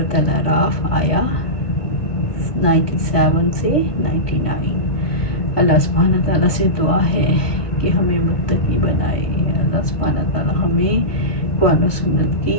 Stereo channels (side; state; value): right; late; 1.6 ms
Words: الاعراف آیا 97 سے 99۔ اللہ سبحانہ تعالیٰ سے دعا ہے کہ ہمیں متقی بنائے۔ اللہ سبحانہ تعالیٰ ہمیں قرآن و سنت